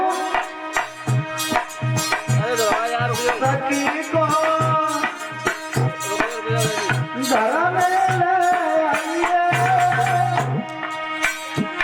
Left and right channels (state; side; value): identical; both; correlation 1.00